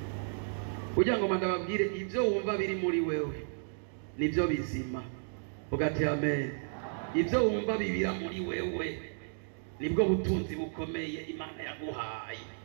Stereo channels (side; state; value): left; silent; digital silence